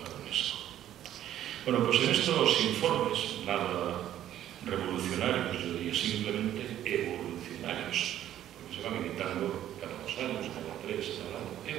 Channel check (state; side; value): quieter; left; 11.9 dB